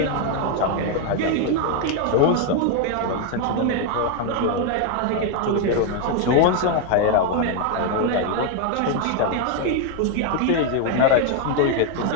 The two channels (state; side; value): different; both; correlation 0.01